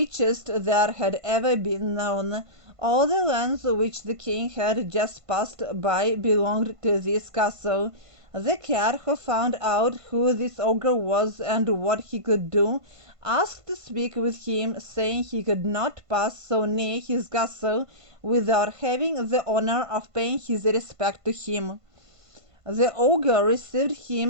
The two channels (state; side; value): late; left; 1.5 ms